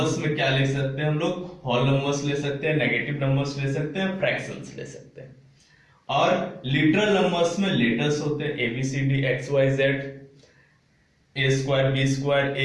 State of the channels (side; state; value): both; identical; correlation 1.00